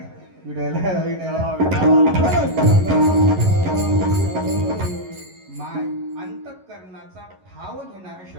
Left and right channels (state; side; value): late; left; 11 ms